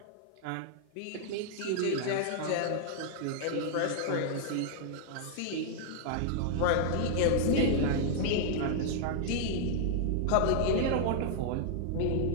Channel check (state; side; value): different; both; correlation 0.00